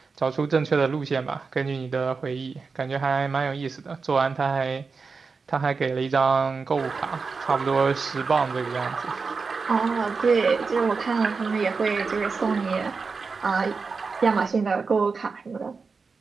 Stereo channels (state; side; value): quieter; left; 4.7 dB